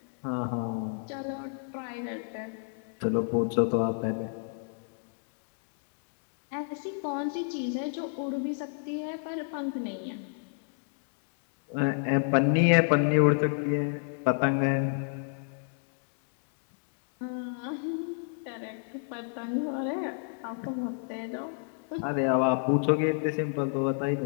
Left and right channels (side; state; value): right; silent; digital silence